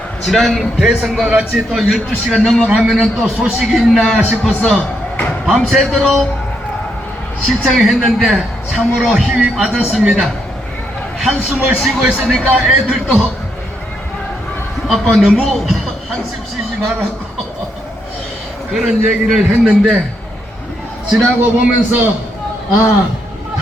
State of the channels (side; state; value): both; normal; correlation 0.78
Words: 지난 대선과 같이 또 12시가 넘어가면은 또 소식이 있나 싶어서 밤새도록 신청했는데 참으로 힘이 빠졌습니다. 한숨을 쉬고 있으니까 애들도 아빠 너무 한숨 쉬지 말라고 그런 얘기를 했는데 지나고 보면서